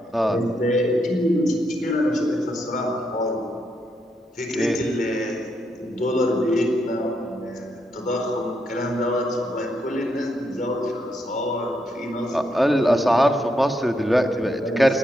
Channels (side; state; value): both; normal; correlation 0.79